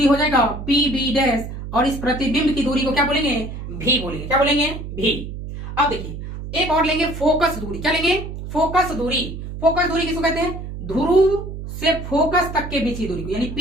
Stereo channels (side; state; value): right; noise; hum, 9 dB below the sound